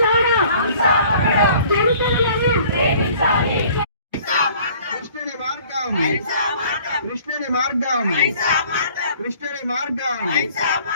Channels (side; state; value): both; inverted; correlation -0.53